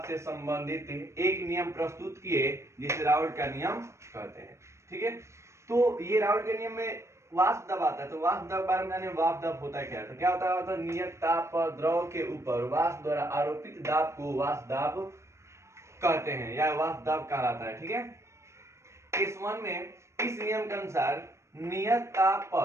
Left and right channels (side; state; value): left; late; 0.13 ms